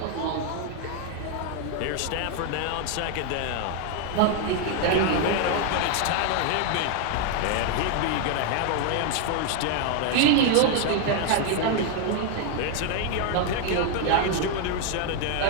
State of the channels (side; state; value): both; different; correlation 0.01